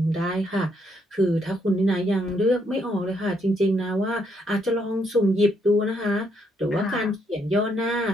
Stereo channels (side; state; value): both; normal; correlation 0.73